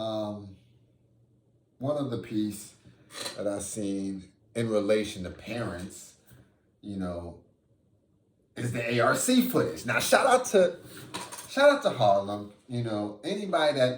of the piece that I seen in relation to parents, you know, is the ARC footage. Now, shout out to Harlem. You know, anybody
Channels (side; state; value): both; identical; correlation 1.00